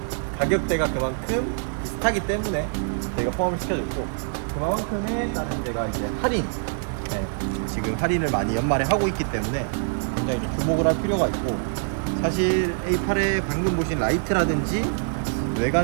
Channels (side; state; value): left; silent; 62 dB below the other